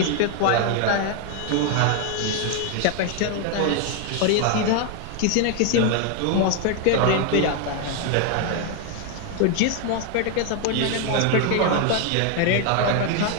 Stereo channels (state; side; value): different; both; correlation 0.01